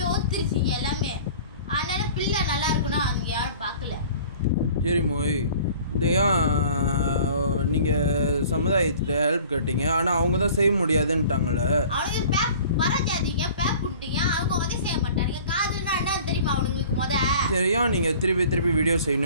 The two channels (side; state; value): both; inverted; correlation -0.47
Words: ஒத்துருச்சிங்க எல்லாமே. அதனால பிள்ளை நல்லா இருக்குன்னா அவங்க யாரும் பார்க்கல. சரி மோய், இந்த ஏன் நீங்க சமுதாயத்துல ஹெல்ப் கேட்டீங்க, ஆனா அவங்க தான் செய்ய முடியாதுன்ட்டாங்களே. அவனுக்கு பேப் வரஞ்சாதீங்க, பேப் புண்டிங்க, அவங்க வந்து செய்ய மாட்டாங்க. காதுன்னா என்னன்னு தெரியுமா அவனுங்களுக்கு முத? சரி, ஏன் நீங்க திருப்பி வீடியோ